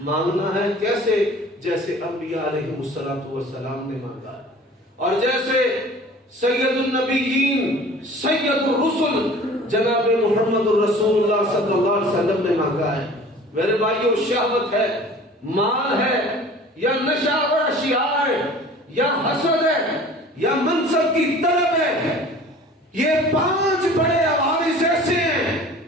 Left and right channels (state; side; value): normal; both; correlation 0.45